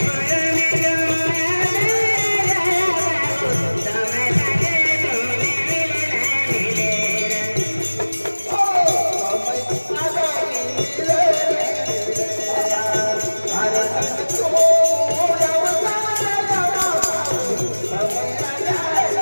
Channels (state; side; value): inverted; both; correlation -1.00